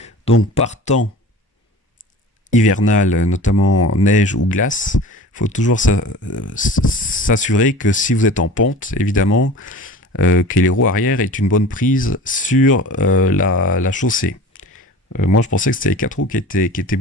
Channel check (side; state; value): both; normal; correlation 0.39